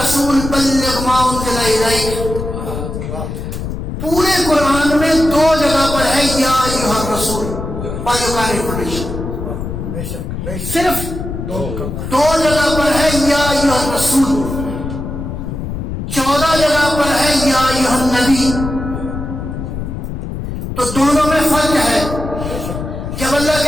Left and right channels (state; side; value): noise; left; rumble, 6 dB below the sound